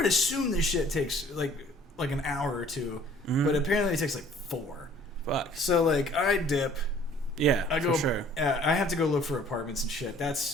assume this shit takes like an hour or two, but apparently it takes like 4. Fuck. So like I dip. Yeah, I go. For sure. I have to go look for apartments and shit.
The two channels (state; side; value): normal; both; correlation 0.54